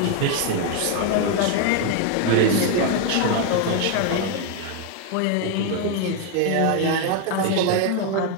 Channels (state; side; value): different; both; correlation 0.01